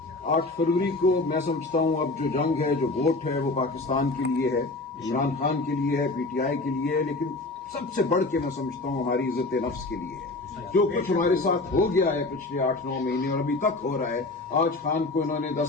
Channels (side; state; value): right; quieter; 3.1 dB